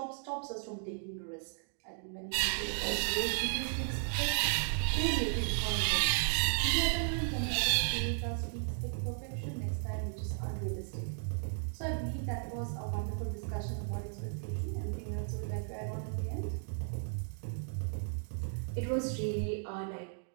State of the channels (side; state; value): left; silent; digital silence